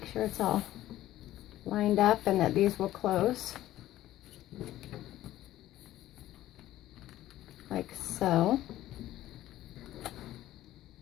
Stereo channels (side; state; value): right; quieter; 14.3 dB